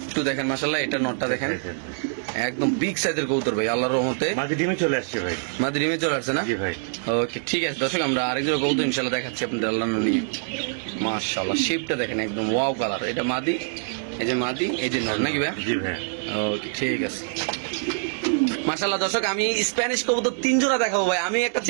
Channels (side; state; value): left; silent; digital silence